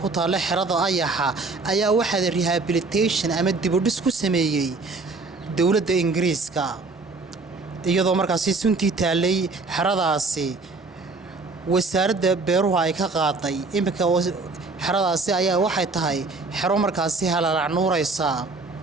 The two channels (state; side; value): quieter; left; 3.8 dB